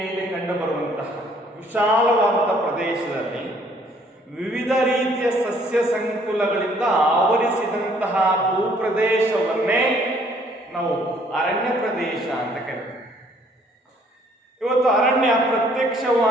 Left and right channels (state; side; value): normal; both; correlation 0.62